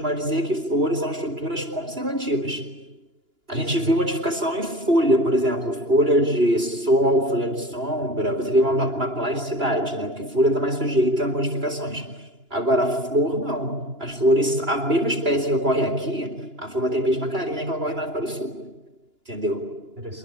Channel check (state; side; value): late; left; 2.9 ms